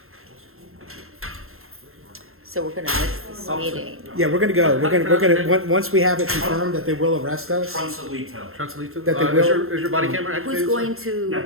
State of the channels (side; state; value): left; late; 0.61 ms